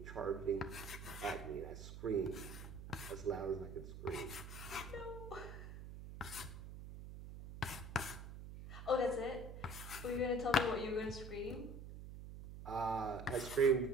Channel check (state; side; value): noise; right; hum, 10 dB below the sound